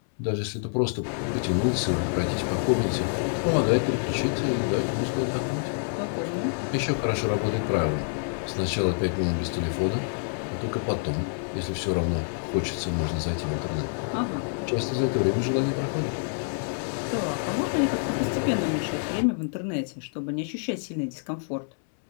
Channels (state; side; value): silent; right; 60 dB below the other